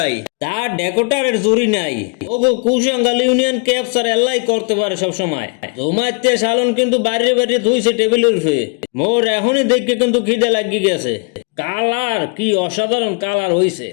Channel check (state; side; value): quieter; right; 35.1 dB